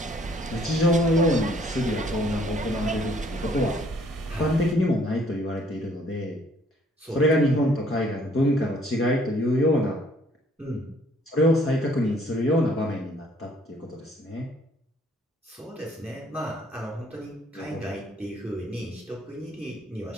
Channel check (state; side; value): normal; both; correlation 0.62